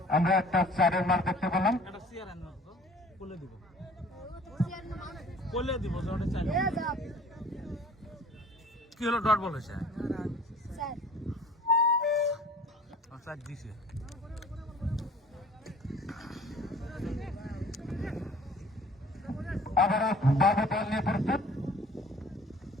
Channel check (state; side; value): normal; both; correlation 0.49